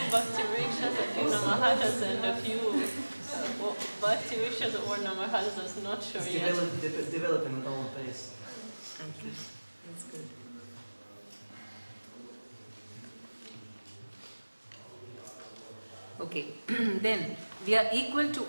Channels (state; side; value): inverted; both; correlation -1.00